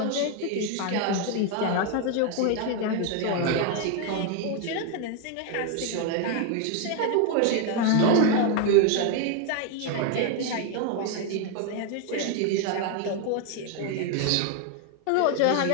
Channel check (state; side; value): different; both; correlation 0.01